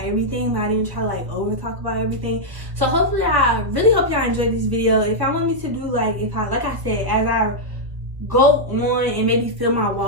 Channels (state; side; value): late; left; 1.3 ms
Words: everything, but I didn't try to like over talk about everything. So hopefully, I really hope y'all enjoyed this video. If y'all want me to do like I said, as I go on and maybe fill my